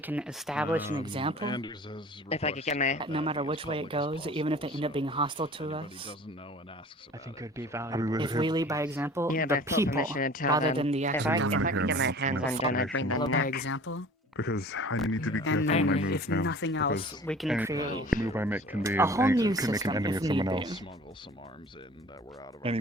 establish an example, If I could get my that no matter which way it goes, even if they end up being hostile to us, I think it would be I mean, valuable. if we lead by example, Yeah, the but full people, permission to tell rather them than the if actual I government, could get my hands undone, I'd bring them follow by back. example, Because I need to be careful and on my then moves if now. nothing else, because we can any create move I make can be a whole new can make an system enemy if of someone need else. be. Any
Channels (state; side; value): normal; both; correlation 0.45